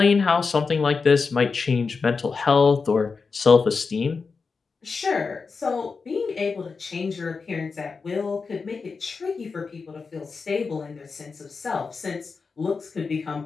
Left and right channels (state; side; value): quieter; right; 4.8 dB